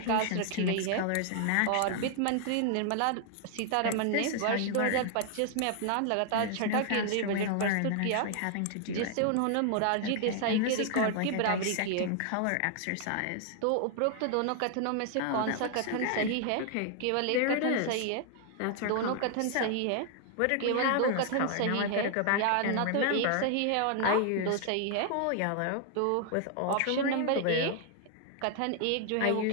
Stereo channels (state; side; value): different; both; correlation 0.00